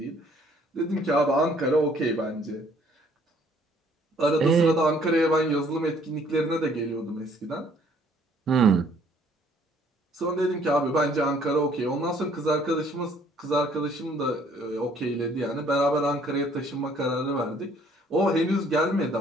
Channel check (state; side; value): normal; both; correlation 0.61